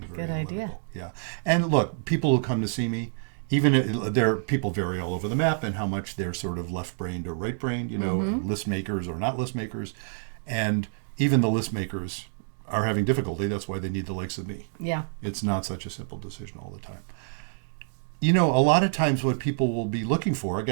very analytical. Idea. Yeah. And look, people who come to see me, even people vary all over the map and how much they're sort of left-brained or right-brained, list makers or not list makers. And even the list makers are having difficulty. That's why they need the likes of me. Yeah. It's not such a simple decision all the time. A lot of times what people will be looking for,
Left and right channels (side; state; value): left; silent; digital silence